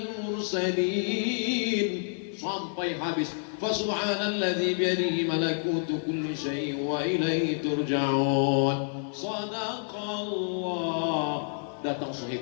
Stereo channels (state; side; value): silent; right; 59 dB below the other